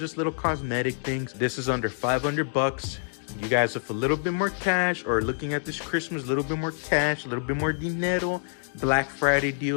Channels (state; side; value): silent; right; digital silence